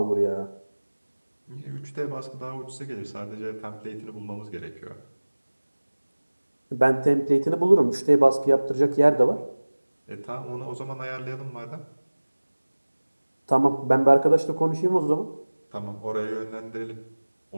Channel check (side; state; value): both; inverted; correlation -1.00